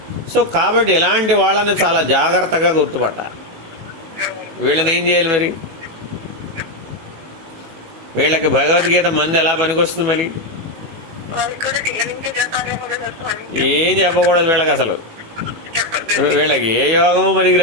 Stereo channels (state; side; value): late; left; 18 ms